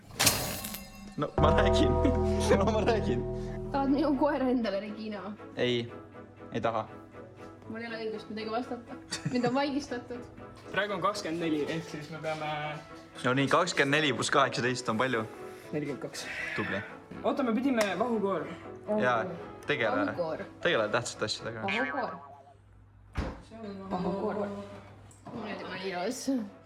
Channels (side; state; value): both; identical; correlation 1.00